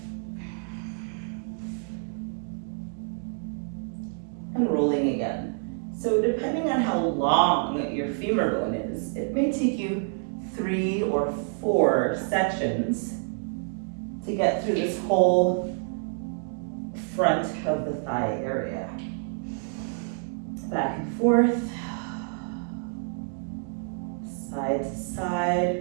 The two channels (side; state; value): left; silent; 56 dB below the other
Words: and rolling again. So depending on how long your femur bone is, it may take you 3 or 4 sections to get through this whole front of the thigh area. Back and forth. side to side,